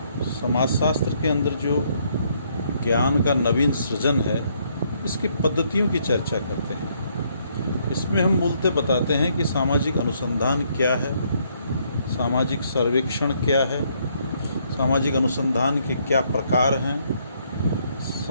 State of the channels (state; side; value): inverted; both; correlation -0.70